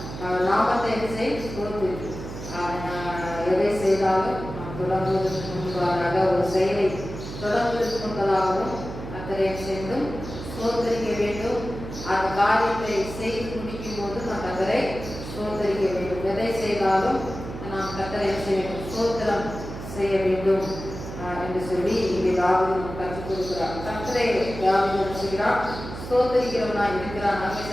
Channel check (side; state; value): right; noise; hum, 10 dB below the sound